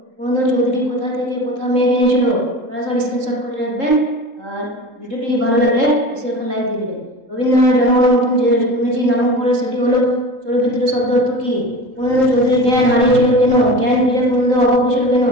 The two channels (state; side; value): late; left; 3.8 ms